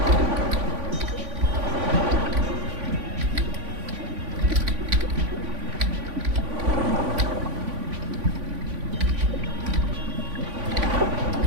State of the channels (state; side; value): late; left; 3.5 ms